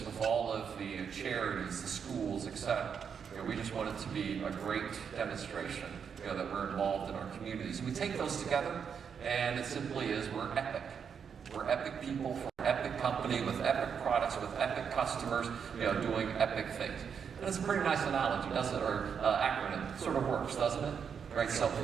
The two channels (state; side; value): quieter; left; 7.0 dB